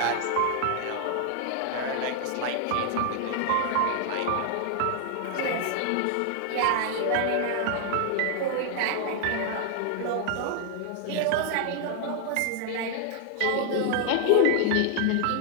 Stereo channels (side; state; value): both; different; correlation 0.00